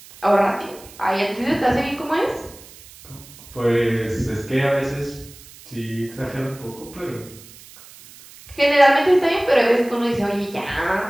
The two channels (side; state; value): right; noise; hiss, 20 dB below the sound